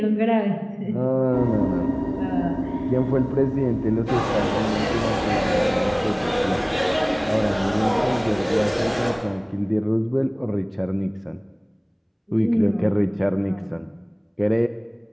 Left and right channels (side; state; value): both; identical; correlation 1.00